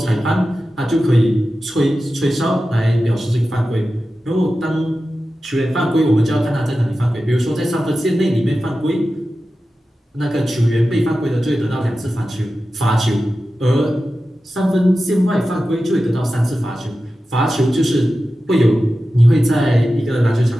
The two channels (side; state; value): both; normal; correlation 0.93